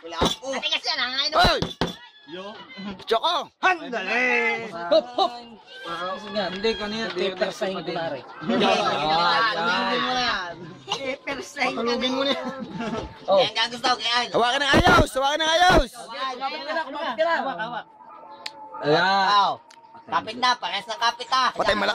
Wala po. Ate kasi yan, hangain mo. Hoy! Choco! Handali! Hop, hop! Hindi, kanina. Pepersahin ko na rin. Halugin mo na yan. Halugin mo na yan. Oh. Yan ang gusto ko kaya. Hawakan ng ayos! Hawakan ng ayos! Kumapit ka na. Hawak. Ayan. Kapit na, pares ng kapit ha. Patay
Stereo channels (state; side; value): identical; both; correlation 1.00